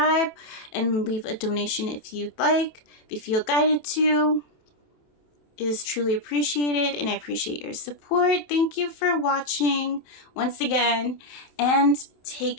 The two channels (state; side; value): late; right; 27 ms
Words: And leave a donation if you'd like. If you feel guided to. It is truly appreciated, and I appreciate your support. Thank you for watching once again, and take